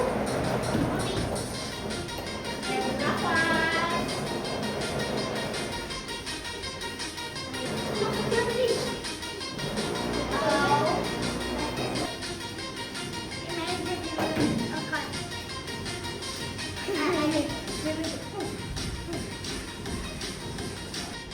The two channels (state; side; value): identical; both; correlation 1.00